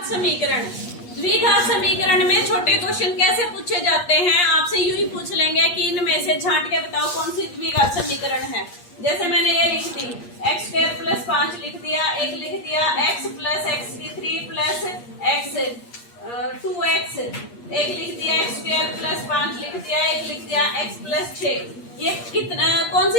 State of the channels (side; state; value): right; late; 8.5 ms